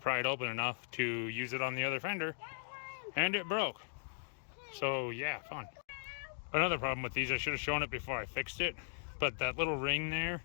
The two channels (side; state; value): right; silent; digital silence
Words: it open enough to use it on the other fender, and it broke. So yeah, fun. Another problem with these, I should have shown it before I fixed it, but that little ring there